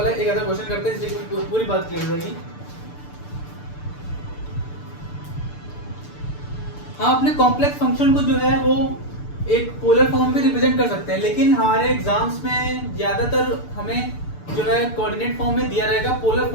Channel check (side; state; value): right; late; 6.8 ms